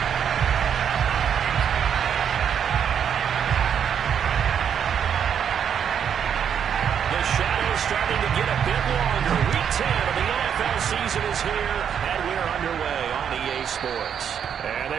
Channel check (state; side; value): quieter; left; 8.1 dB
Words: Starting to get a bit longer. Week 10 of the NFL season is here, and we're underway on EA Sports. And